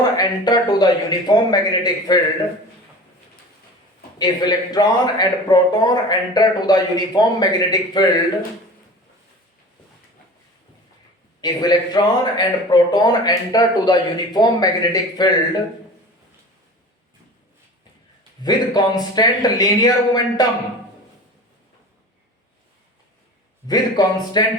enter to the uniform magnetic field, if electron and proton enter to the uniform magnetic field, if electron and proton enter to the uniform magnetic field with constant linear momentum,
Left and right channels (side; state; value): both; normal; correlation 0.37